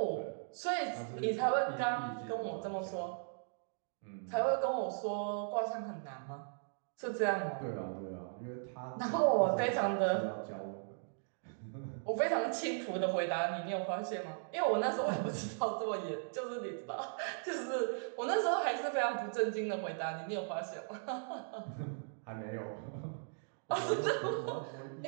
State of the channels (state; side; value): silent; left; digital silence